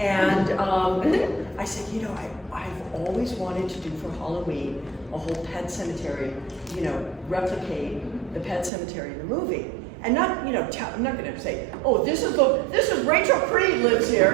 I said, I've always wanted to do for Halloween a whole pet cemetery, replicate the pet cemetery in the movie. And not, I'm not going to say, oh, this is Rachel Creed lives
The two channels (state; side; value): drops out; left; at 8.7 s